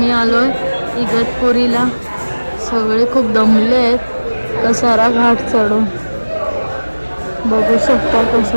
आलोय इगतपुरीला. सगळे खूप दमले आहेत कसारा घाट चढून. बघू शकता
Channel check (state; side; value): inverted; both; correlation -1.00